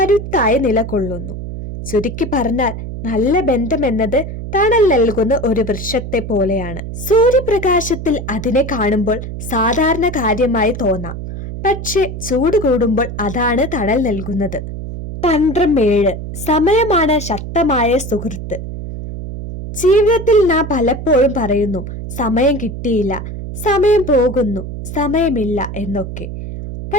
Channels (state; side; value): noise; right; hum, 8 dB below the sound